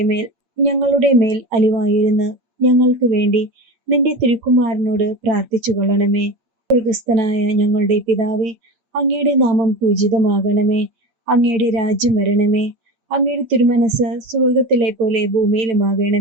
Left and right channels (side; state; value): left; late; 8.7 ms